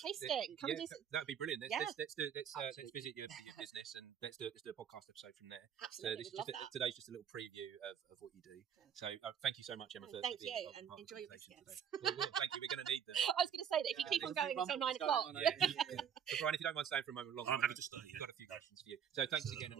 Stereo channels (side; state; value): left; quieter; 8.4 dB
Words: Come and do some... That'd be brilliant. Let's visit your business and let's do a podcast episode from there. Absolutely, so today's just a little preview of what you do. So thank you so much, Emma. Thank you, and enjoy your biscuits. Well, thank you. We're going to need them. I was going to say that if you keep on going until 9 o'clock. So Brian, if you don't mind staying for a moment longer, I'm happy to stay. I've got a few questions for you. So thanks again,